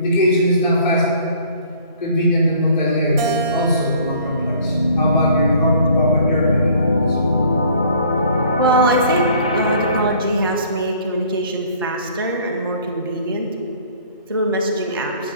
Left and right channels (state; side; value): inverted; both; correlation -0.54